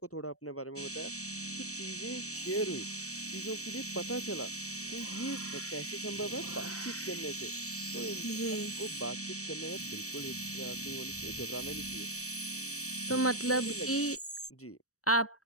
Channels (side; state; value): right; late; 0.65 ms